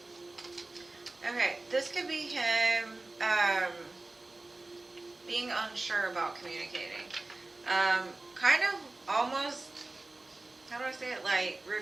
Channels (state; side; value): quieter; left; 3.0 dB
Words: Okay, this could be him being unsure about communicating. Kind of almost, how do I say it, like